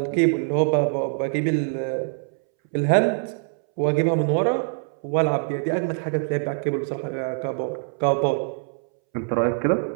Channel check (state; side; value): silent; left; 63 dB below the other